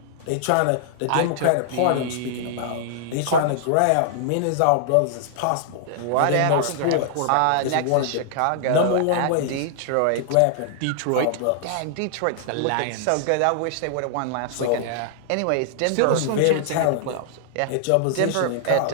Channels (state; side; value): different; both; correlation -0.01